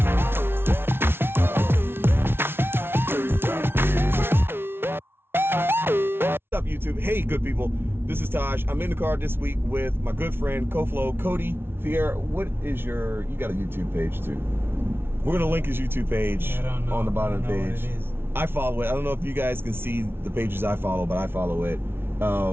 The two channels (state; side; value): late; left; 0.11 ms